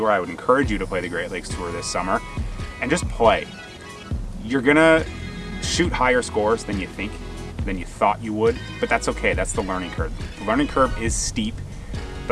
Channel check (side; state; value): both; identical; correlation 1.00